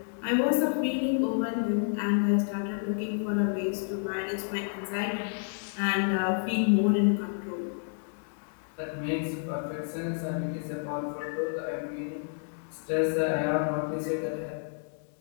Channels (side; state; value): right; silent; 58 dB below the other